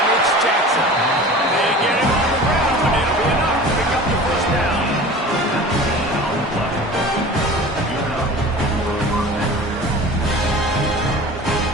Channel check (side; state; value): both; normal; correlation 0.39